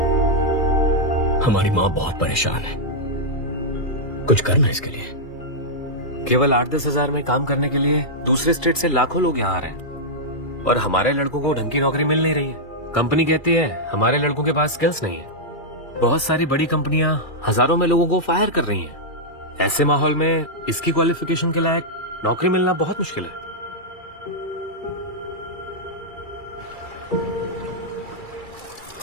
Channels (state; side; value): late; right; 2.3 ms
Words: हमारी माँ बहुत परेशान है, कुछ करना इसके लिए। केवल 8-10 हजार में काम करने के लिए दूसरे स्टेट से लाखों लोग यहाँ आ रहे हैं, और हमारे लड़कों को ढंग की नौकरी मिल नहीं रही है। कंपनी कहती है हमारे लड़कों के पास स्किल्स नहीं है। बहुत सारी बड़ी कंपनियां हजारों में लोगों को फायर कर रही हैं। ऐसे माहौल में इसकी क्वालिफिकेशन के लायक नौकरी मिलना बहुत मुश्किल है।